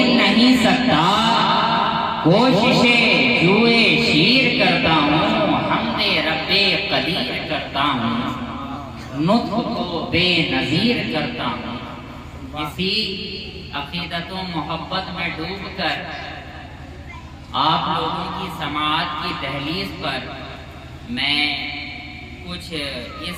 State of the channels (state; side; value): identical; both; correlation 1.00